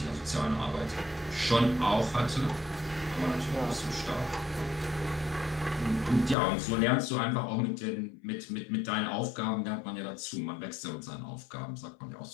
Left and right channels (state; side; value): drops out; right; at 6.4 s